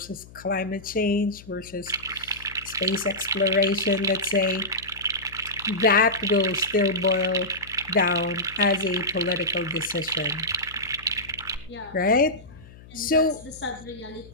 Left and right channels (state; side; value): noise; left; hum, 20 dB below the sound